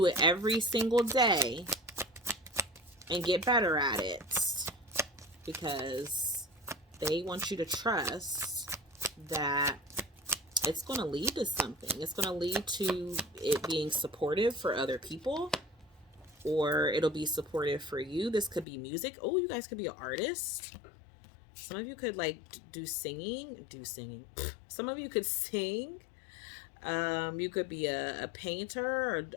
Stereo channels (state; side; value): drops out; right; at 18.7 s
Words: it every single day and get better at it, because they want you to trust that it's going to lead to something. It's going to lead to it being supportive for other people, or it'll be supportive for you. This could be music. Oh, you guys could be an artist. Some of you could like do singing. Some of you could sing. You could be a painter or